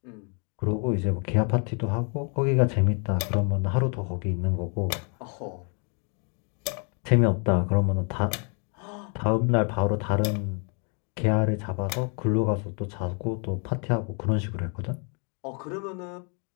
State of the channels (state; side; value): quieter; right; 38.1 dB